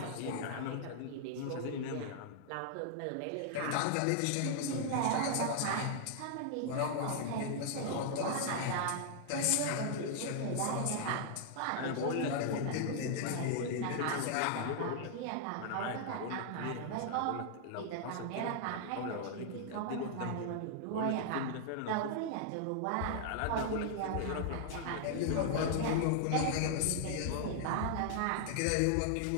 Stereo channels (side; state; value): both; different; correlation -0.01